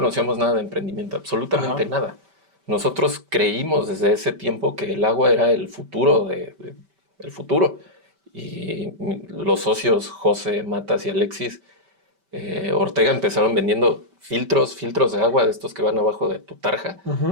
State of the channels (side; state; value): left; late; 5.2 ms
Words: nada de emprendimiento, absolutamente ajá. nada. Nosotros creímos desde ese tiempo que el agua era el futuro el futuro. Y los socios José, Matas y Alexis Ortega empezaron vendiendo filtros de agua de estos que van abajo de tu tarja,